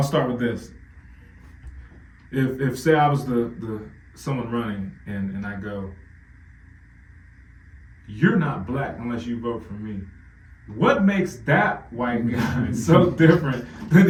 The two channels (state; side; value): identical; both; correlation 1.00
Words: start with this. If say I was the someone running and I go, you're not black unless you vote for me. What makes that white guy so different than